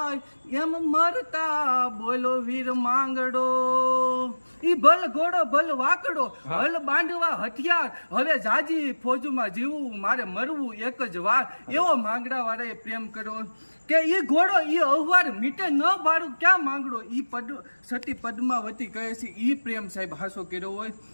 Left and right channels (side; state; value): both; inverted; correlation -1.00